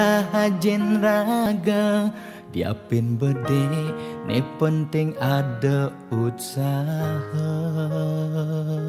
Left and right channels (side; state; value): both; identical; correlation 1.00